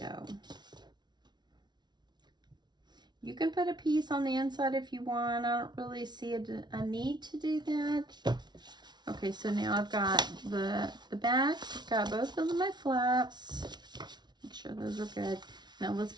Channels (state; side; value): late; left; 0.20 ms